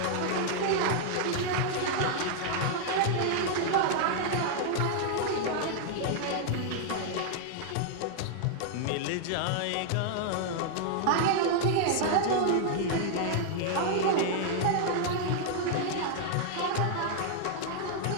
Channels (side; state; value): both; different; correlation 0.00